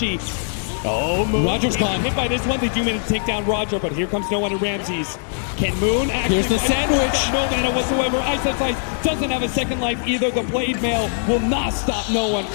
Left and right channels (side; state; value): right; silent; digital silence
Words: Oh, Moon. Roger's gone. Hit by this one. They do manage to take down Roger, but here comes no one in Ramses. Can Moon actually... Here's the sandwich. No mana whatsoever. Ice doesn't have a second life either. The Blade Mail will not stop no one